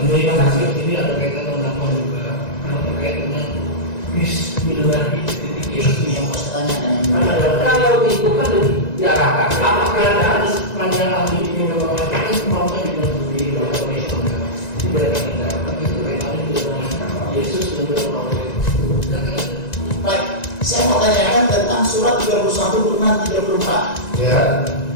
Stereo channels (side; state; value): right; late; 1.9 ms